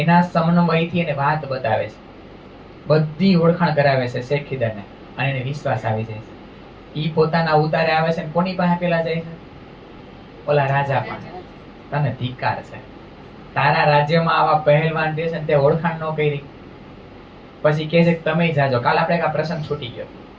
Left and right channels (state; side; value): identical; both; correlation 1.00